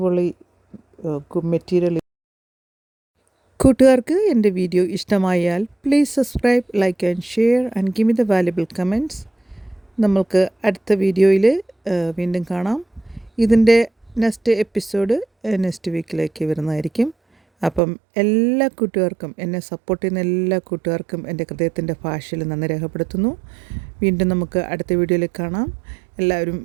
മെറ്റീരിയൽ. കൂട്ടുകാർക്ക് എൻ്റെ വീഡിയോ ഇഷ്ടമായാൽ please subscribe, like and share and give me the valuable comments. നമ്മൾക്ക് അടുത്ത വീഡിയോയിൽ വീണ്ടും കാണാം. ഇതിൻ്റെ നെക്സ്റ്റ് എപ്പിസോഡ് നെക്സ്റ്റ് വീക്കിലേക്ക് വരുന്നതായിരിക്കും. അപ്പം എല്ലാ കൂട്ടുകാർക്കും, എന്നെ സപ്പോർട്ട് ചെയ്യുന്ന എല്ലാ കൂട്ടുകാർക്കും എൻ്റെ ഹൃദയത്തിൻ്റെ ഭാഷയിൽ നന്ദി രേഖപ്പെടുത്തുന്നു. വീണ്ടും നമുക്ക് അടുത്ത വീഡിയോയിൽ കാണാം. എല്ലാവരും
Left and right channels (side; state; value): left; drops out; at 17.8 s